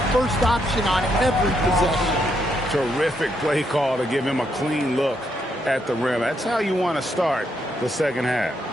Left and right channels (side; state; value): both; normal; correlation 0.77